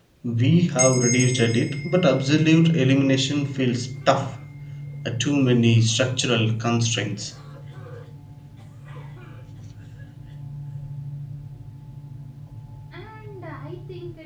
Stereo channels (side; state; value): both; identical; correlation 1.00